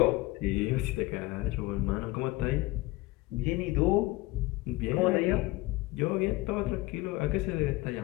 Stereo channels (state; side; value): quieter; right; 20.2 dB